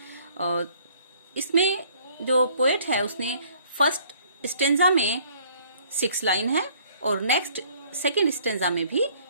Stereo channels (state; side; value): inverted; both; correlation -0.59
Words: और इसमें जो पोएट है उसने फर्स्ट स्टेंजा में 6 लाइन है और नेक्स्ट सेकंड स्टेंजा में भी